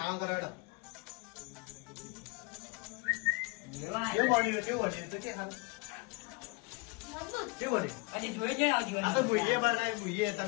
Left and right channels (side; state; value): right; quieter; 26.7 dB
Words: કરો હેડો. લેવા કેવું બન્યું કેવું બન્યું તો કે હાલ મજબૂત કેવું બન્યું? અને જોઈ જઈને આવજો આ તો ભૂઈએ બનાવી ભૂઈએ